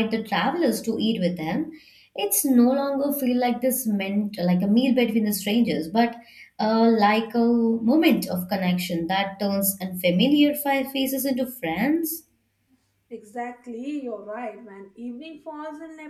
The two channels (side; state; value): both; identical; correlation 1.00